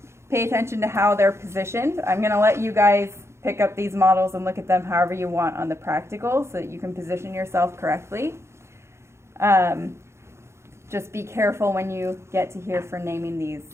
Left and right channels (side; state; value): left; late; 0.13 ms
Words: pay attention to how they're positioned. I'm going to let you guys pick up these models and look at them however you want on the practical so that you can position yourself correctly. Just be careful when you get to here for naming